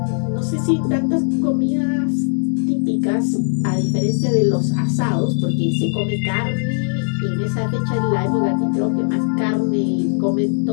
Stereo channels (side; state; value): right; silent; digital silence